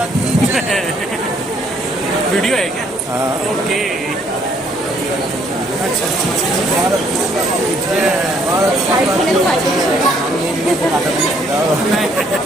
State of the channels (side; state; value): both; normal; correlation 0.66